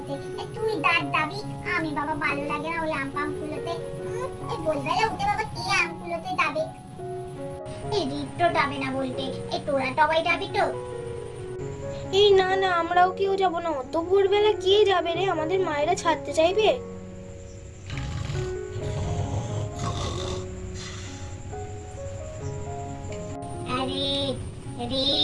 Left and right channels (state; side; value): identical; both; correlation 1.00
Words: তুই দাঁত যাবি। আমি বাবা ভালো লাগে না ওই আম কুলোতে, এই ভোরবেলা উঠে বাবা কে আম কুলোতে যাবে? এই রিক্তো যাবে না বলতে, এই তোরা সবাই যাবি তো? এই না না, আমরাও কেউ যাব না। অত ভোরবেলা কে যাবে রে, আমাদের মায়েরা ছাড়তে চাইবে? আরে রে